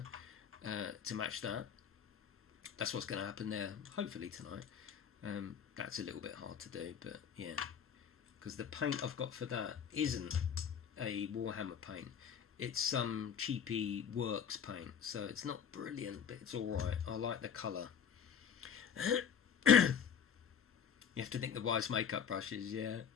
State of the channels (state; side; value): quieter; right; 7.7 dB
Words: to match that, that's what's going to happen there, hopefully tonight. That's a little bit hard to do, but yeah, because the paint I've got for that isn't a Warhammer paint. It's some cheapy works paint, so it's not brilliant, but it's alright. I like the colour. You have to think the wise makeup brushes, yeah.